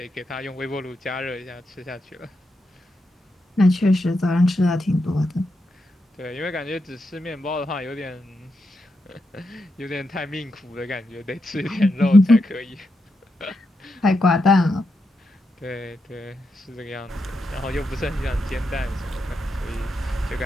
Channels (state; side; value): normal; both; correlation 0.85